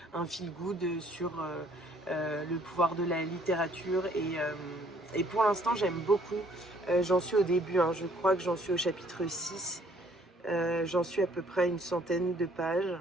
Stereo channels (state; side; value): normal; both; correlation 0.61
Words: un feel good sur le pouvoir de la littérature, et pour l'instant j'aime beaucoup. J'en suis au début, hein, je crois que j'en suis au chapitre 6. J'en suis à peu près une centaine de pages,